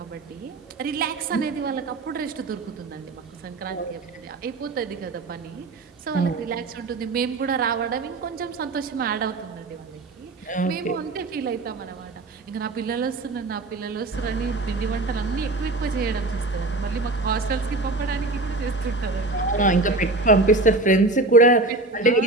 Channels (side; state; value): left; quieter; 3.1 dB